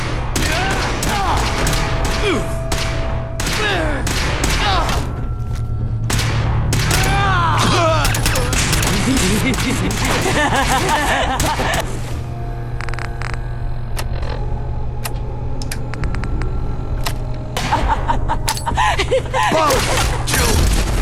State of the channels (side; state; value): both; identical; correlation 1.00